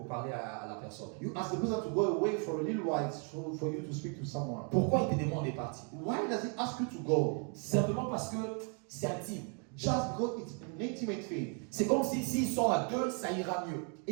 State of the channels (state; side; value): quieter; left; 39.6 dB